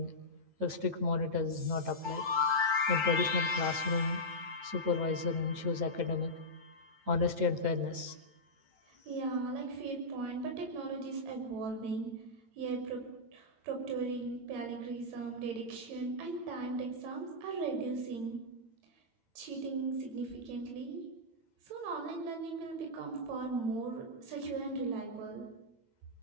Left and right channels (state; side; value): late; left; 8.9 ms